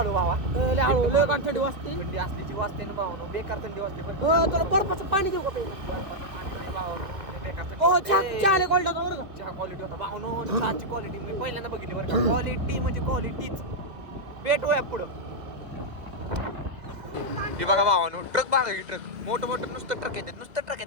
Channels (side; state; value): left; late; 2.1 ms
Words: व्हावा. लय हळू लय थंडी वाजते. थंडी असल्याची वाजते ना भावानो बेकार थंडी वाजते. पण तुला बर्फाचं पाणी देऊ का पहिला. बेकार थंडी हो वाजते. चहा क्वालिटी होता बरं का. चहा क्वालिटी होता भावनो. चहाची क्वालिटी मी पहिल्यांदा बघितली बरं का. क्वालिटी म्हणजे क्वालिटीच. भेटूया पुढं. हे बघा भावानो ट्रक बघा की ट्रक मोठं मोठं नुसतं ट्रक येतात नुसतं ट्रक